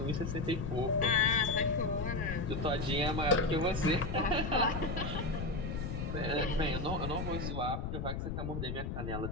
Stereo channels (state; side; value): noise; left; rumble, 4 dB below the sound